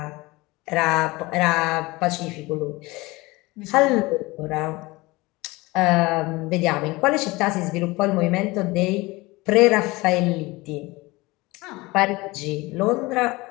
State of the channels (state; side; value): quieter; right; 22.1 dB